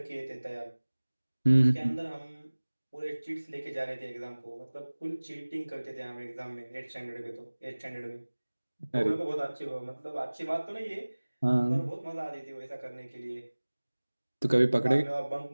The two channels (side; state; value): both; inverted; correlation -1.00